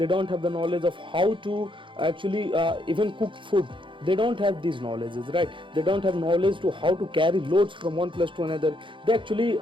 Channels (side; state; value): left; late; 0.24 ms